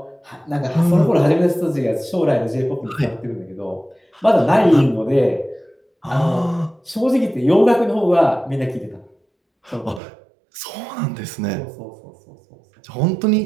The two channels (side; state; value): left; drops out; at 10.0 s